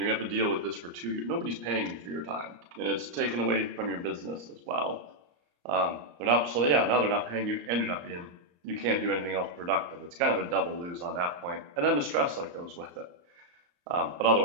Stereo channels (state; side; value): late; left; 34 ms